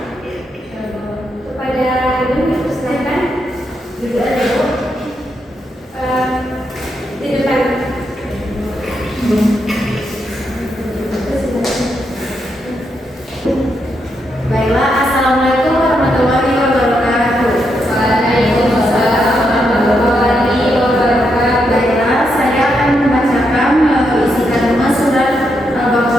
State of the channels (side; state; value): both; normal; correlation 0.81